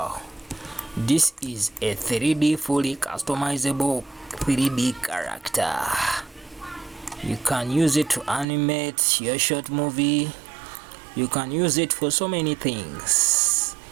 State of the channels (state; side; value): drops out; left; at 8.5 s